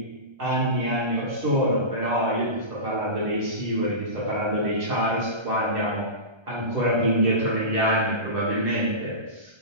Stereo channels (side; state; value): left; late; 1.3 ms